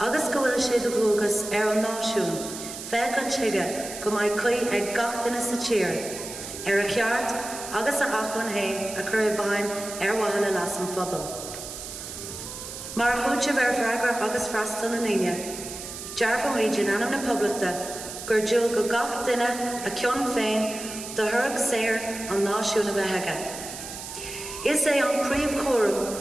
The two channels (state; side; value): noise; right; hiss, 10 dB below the sound